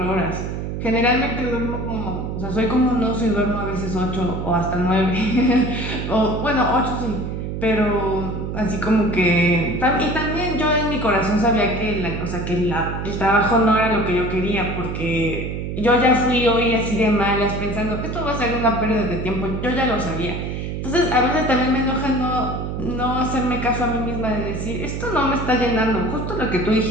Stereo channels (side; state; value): right; noise; hum, 4 dB below the sound